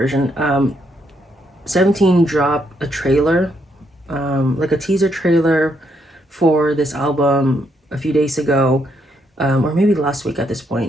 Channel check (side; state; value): both; normal; correlation 0.75